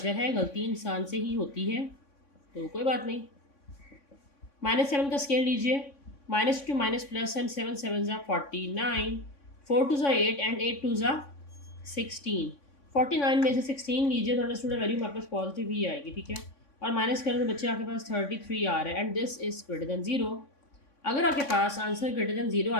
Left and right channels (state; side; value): late; right; 3.6 ms